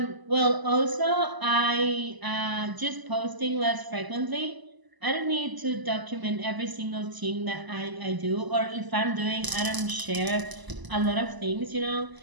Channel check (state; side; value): late; left; 1.0 ms